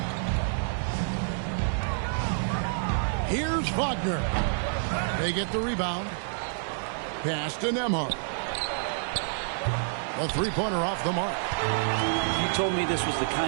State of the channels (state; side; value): silent; left; 59 dB below the other